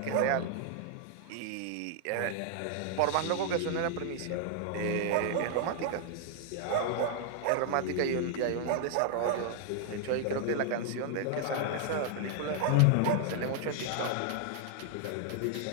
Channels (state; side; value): different; both; correlation 0.00